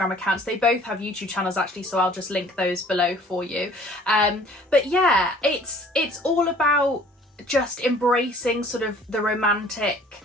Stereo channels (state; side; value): normal; both; correlation 0.53